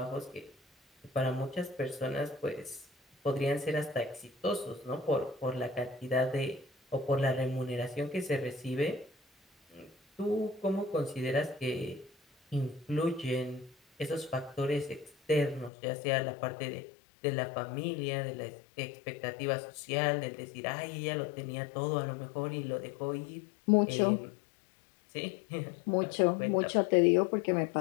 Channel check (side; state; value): right; drops out; at 15.7 s